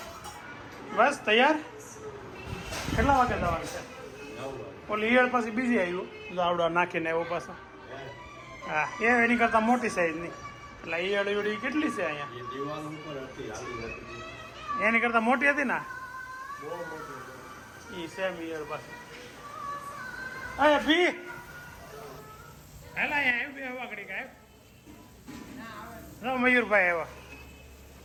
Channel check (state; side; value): identical; both; correlation 1.00